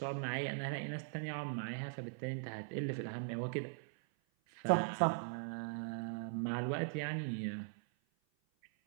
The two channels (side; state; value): left; silent; 51 dB below the other